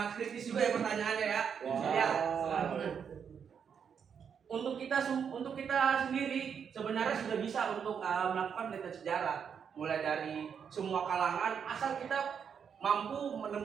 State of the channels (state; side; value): quieter; left; 7.2 dB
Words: kritis juga ya pertanyaannya ya. Ya. Untuk kita sendiri sebenarnya sudah bisa untuk melakukan penelitian sejarah, mulai dari semua kalangan, asal kita mampu